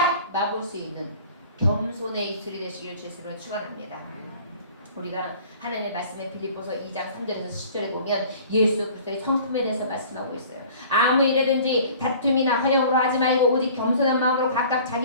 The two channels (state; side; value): inverted; both; correlation -0.48